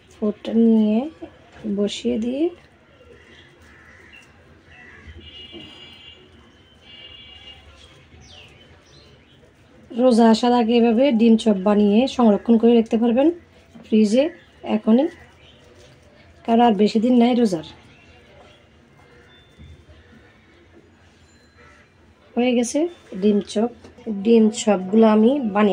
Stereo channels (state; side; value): identical; both; correlation 1.00